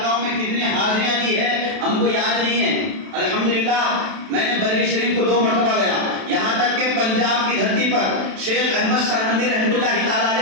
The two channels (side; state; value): left; late; 32 ms